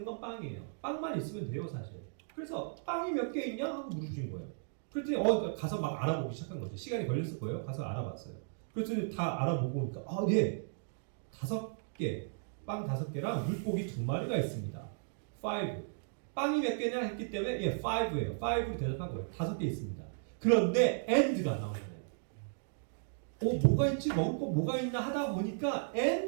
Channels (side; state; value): left; silent; digital silence